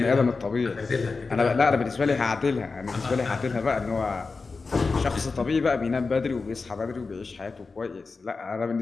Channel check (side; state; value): right; quieter; 4.2 dB